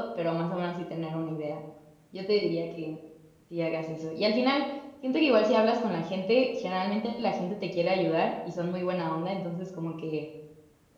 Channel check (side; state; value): both; identical; correlation 1.00